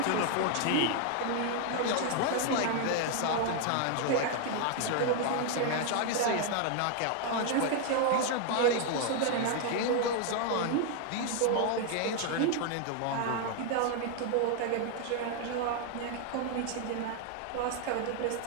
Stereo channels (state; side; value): different; both; correlation 0.00